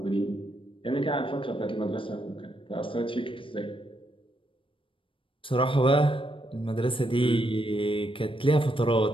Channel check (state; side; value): late; right; 0.25 ms